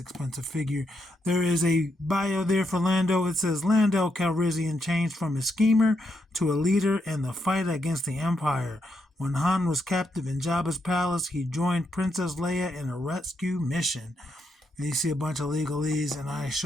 figure. There is a bio there for Lando. It says, Lando Calrissian changed from a schemer to a leader in the fight against the Empire. When Han was captive in Jabba's palace, he joined Princess Leia in a rescue mission. And you see a bunch of legalese, and I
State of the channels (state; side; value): normal; both; correlation 0.80